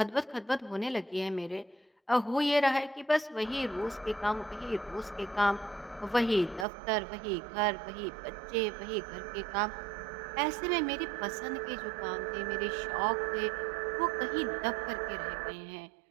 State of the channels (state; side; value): drops out; left; at 6.7 s